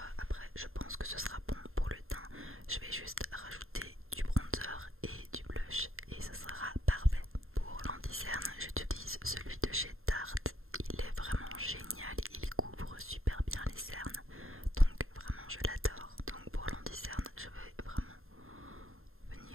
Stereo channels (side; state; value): left; late; 0.61 ms